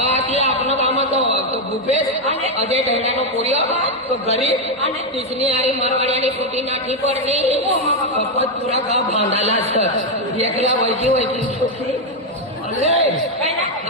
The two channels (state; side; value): normal; both; correlation 0.04